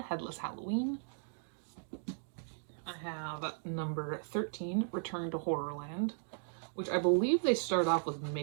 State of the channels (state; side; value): silent; left; digital silence